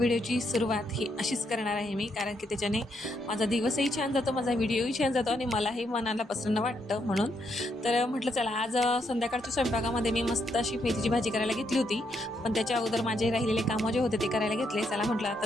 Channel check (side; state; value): both; normal; correlation 0.77